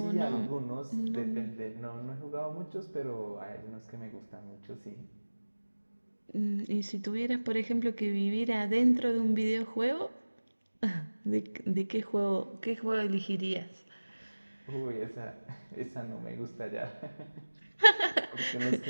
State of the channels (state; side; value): inverted; both; correlation -1.00